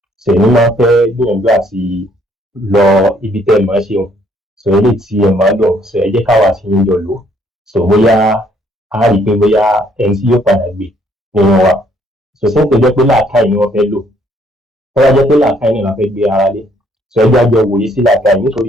sèmi máa ń fẹ́ gbìyànjú àti lọ ibi tẹ́ ẹ máa ṣe wọn so ilé tí ẹ máa lọ so ẹ jẹ́ káwa sí ń jọ lò so bóyá a rí i pé bóyá ẹni tí yóò padà gbé nínú wa so ṣé ń pè jẹ́ pé làákàyè ni wọ́n fẹ́ lò tó bá jẹ́ pé làákàyè ni wọ́n fẹ́ gbé ara lé so ẹ jájọ wòye sí làákàyè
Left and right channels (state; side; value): normal; both; correlation 0.66